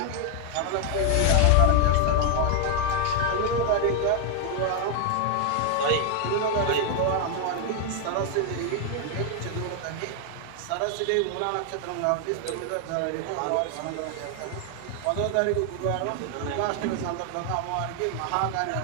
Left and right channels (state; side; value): different; both; correlation 0.00